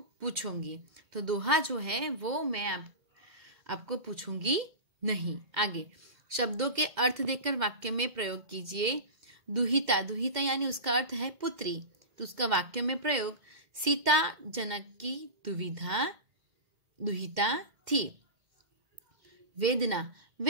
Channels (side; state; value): left; late; 2.1 ms